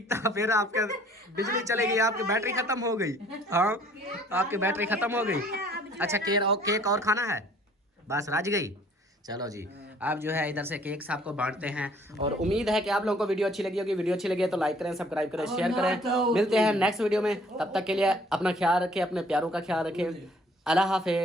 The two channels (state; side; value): normal; both; correlation 0.57